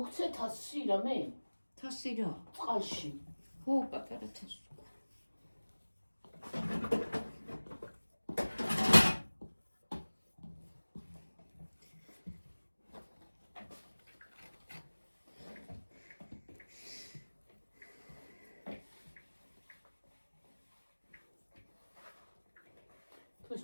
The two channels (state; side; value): inverted; both; correlation -1.00